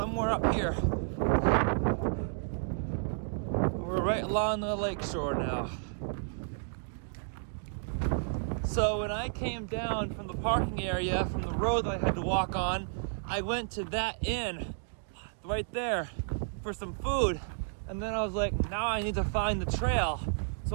up here. We're right along the lake shore now. So when I came down from the parking area, from the road that I had to walk on, I went to that inn right there for some food. And then I was like, now I need to find the trail.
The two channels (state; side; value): silent; left; digital silence